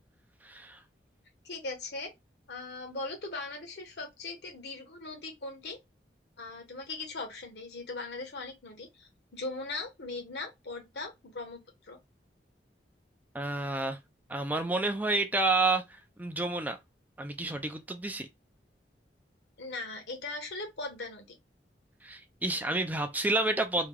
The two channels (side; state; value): both; normal; correlation 0.36